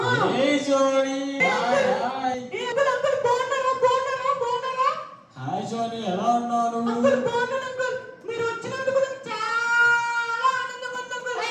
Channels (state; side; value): identical; both; correlation 1.00